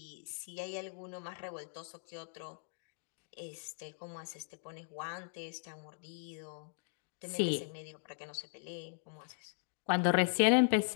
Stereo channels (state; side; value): silent; right; digital silence